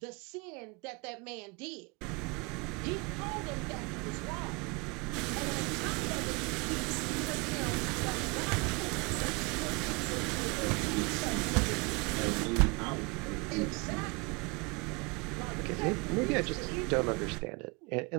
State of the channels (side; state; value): left; quieter; 29.2 dB